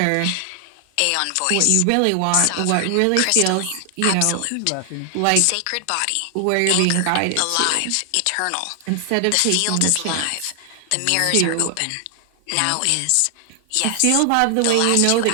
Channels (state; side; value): different; both; correlation 0.00